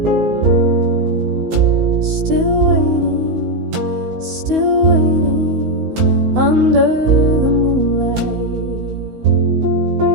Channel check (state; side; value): late; left; 16 ms